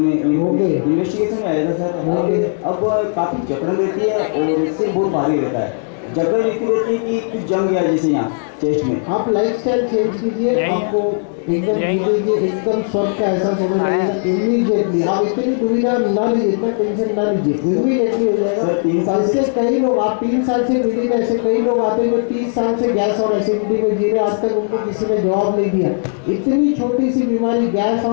में आया था सर। अब काफ़ी जकड़न रहती है और इससे बहुत भारी रहता है। जकड़न इतनी रहती है कि कुछ जम गया जैसे यहाँ चेस्ट में। आप लाइफस्टाइल चेंज कीजिए, आपको एकदम स्वस्थ का एहसास होगा इमीडिएटली। आप इतनी दुविधा ना लीजिए, इतना टेंशन ना लीजिए, इमीडिएटली हो जाएगा। सर 3 साल से कई लोग, आप 3 साल से पीड़ित, ऐसे कई लोग आते हैं जो 30 साल से गैस और एसिडिटी को जी रहे, आज तक उनको किसी ने जवाब नहीं दिया। इतनी छोटी सी बीमारी गैस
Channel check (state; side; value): silent; right; digital silence